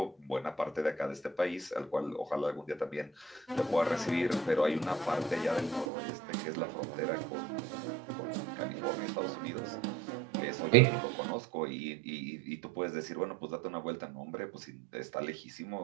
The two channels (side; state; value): left; drops out; at 5.9 s